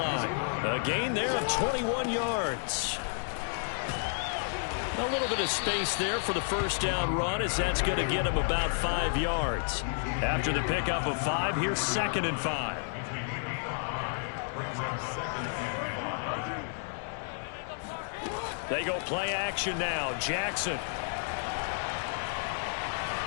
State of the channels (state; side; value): silent; right; 57 dB below the other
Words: A gain there of 21 yards. A little bit of space there for the first down run as that's going to get him about 5 yards. After the pickup of 5, here's 2nd and 5. They go play action now. Jackson.